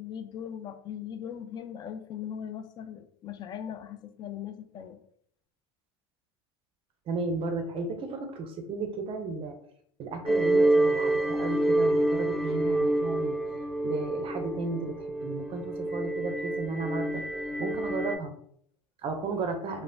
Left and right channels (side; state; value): both; normal; correlation 0.80